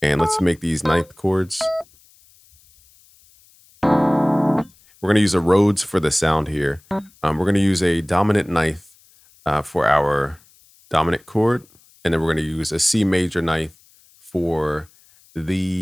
And let's make these ninth chords. We're going to use a Rhodes for the sound here. We're going to use a dominant ninth for our dominant chord. And then we're going to use a C major ninth for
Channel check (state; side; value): noise; left; hiss, 30 dB below the sound